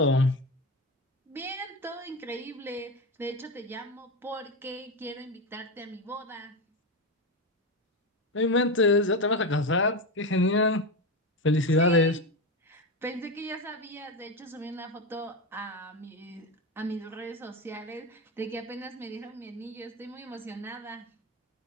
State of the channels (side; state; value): both; normal; correlation 0.16